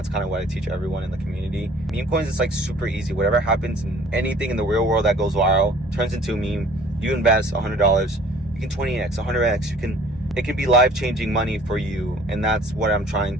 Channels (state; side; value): normal; both; correlation 0.53